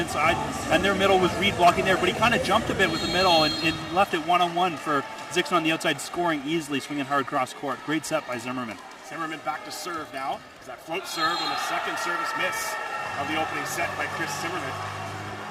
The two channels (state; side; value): identical; both; correlation 1.00